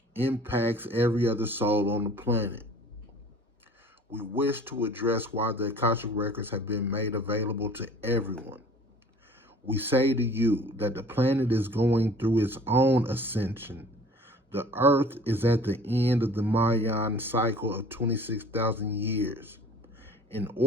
impacts every other soul on the planet. We wish to address why the Akashic records have been made available to everyone. We say to you that the planet is going through its own ascension. The Earth is at the end of the Mayan cycle of 26,000 years. In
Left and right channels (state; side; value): normal; both; correlation 0.48